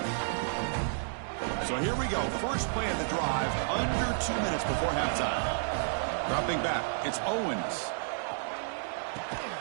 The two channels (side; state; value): left; silent; digital silence